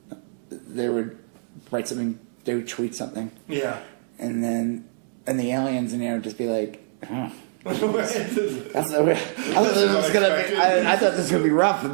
They would write something, they would tweet something. Yeah. And the aliens in there would just be like, huh. This is unexpected. I thought this was going to be rough, but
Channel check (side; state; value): left; silent; digital silence